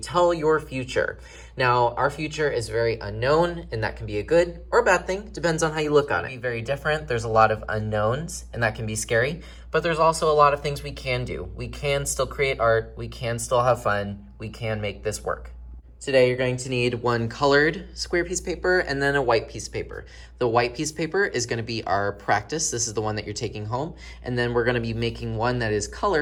your future. Now, our future is very unknown, and that can be a good or a bad thing. Depends on how you look on it. It can be very different. There's a lot of unknowns, and that can be scary. But there's also a lot of things we can do. We can still create art. We can still have fun. We can make this work. Today, you're going to need one colored square piece of paper and then a white piece of paper. The white piece of paper is going to be our practice. This is the one that you're taking home. And then we're going to be making one that is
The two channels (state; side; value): identical; both; correlation 1.00